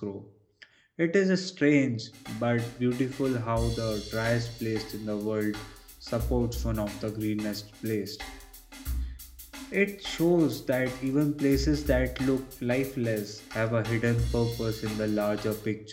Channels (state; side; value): identical; both; correlation 1.00